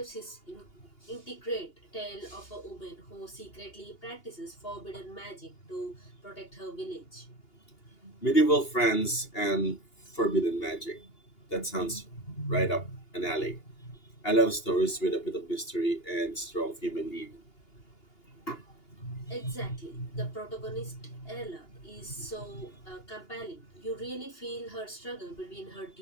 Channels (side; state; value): right; late; 2.8 ms